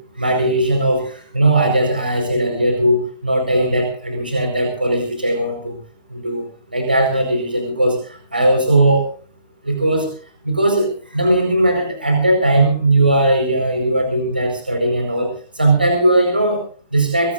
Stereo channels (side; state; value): both; inverted; correlation -0.73